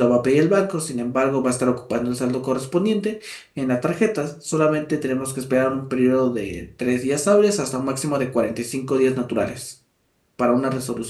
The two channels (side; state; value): both; identical; correlation 1.00